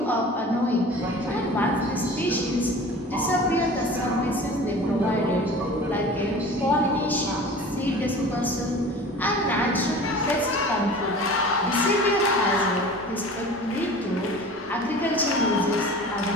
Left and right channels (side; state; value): both; normal; correlation 0.40